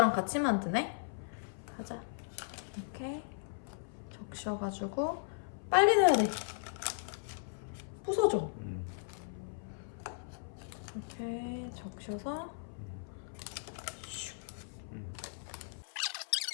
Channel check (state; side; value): silent; right; 53 dB below the other